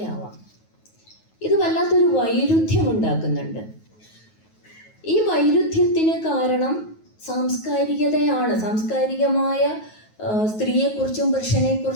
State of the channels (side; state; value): right; late; 9.3 ms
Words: ആവാം. ഇത് വല്ലാത്തൊരു വൈരുദ്ധ്യം ഉണ്ടാക്കുന്നുണ്ട്. ഈ വൈരുദ്ധ്യത്തിന് കാരണം സാംസ്കാരികതയാണ്. സാംസ്കാരികമായ സ്ത്രീയെക്കുറിച്ചും